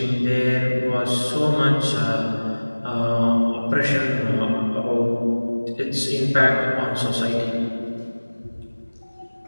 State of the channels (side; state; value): both; inverted; correlation -1.00